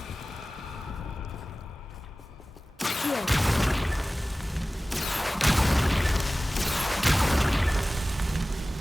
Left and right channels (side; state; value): both; normal; correlation 0.97